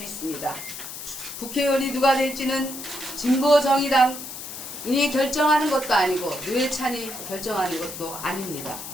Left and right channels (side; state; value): left; noise; hiss, 9 dB below the sound